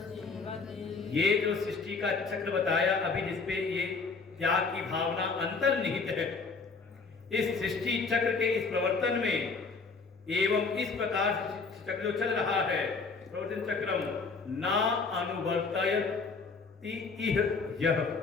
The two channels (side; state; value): right; quieter; 4.5 dB